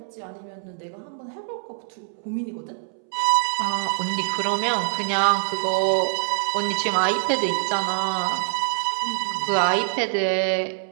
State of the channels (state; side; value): silent; left; 62 dB below the other